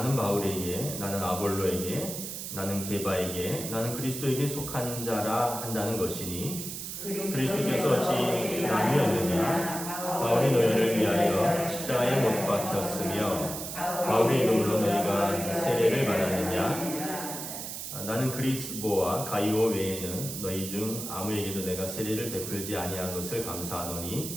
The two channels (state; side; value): noise; right; hiss, 7 dB below the sound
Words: 바울에게, 나는 아볼로에게, 나는 게바에게, 나는 그리스도에게 속한 자라 한다는 것이니 그리스도께서 어찌 나뉘었느냐? 바울이 너희를 위하여 십자가에 못 박혔으며 바울의 이름으로 너희가 세례를 받았느냐? 나는 그리스보와 가이오 외에는 너희 중 아무에게도 내가 세례를 베풀지 아니한 것을